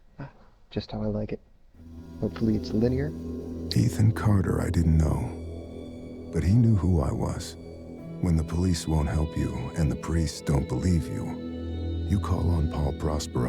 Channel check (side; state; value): both; identical; correlation 1.00